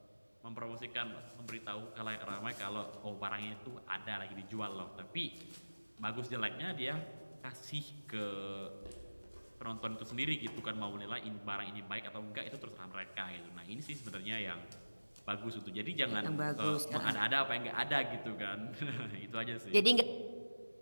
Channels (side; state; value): both; inverted; correlation -1.00